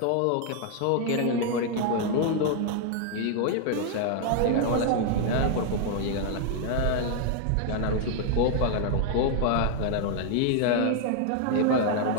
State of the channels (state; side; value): different; both; correlation 0.00